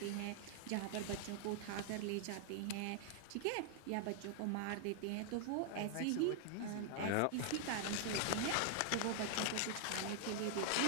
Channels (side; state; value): both; different; correlation 0.00